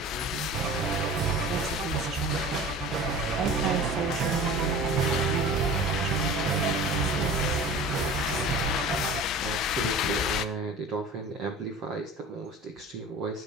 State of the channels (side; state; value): both; normal; correlation 0.39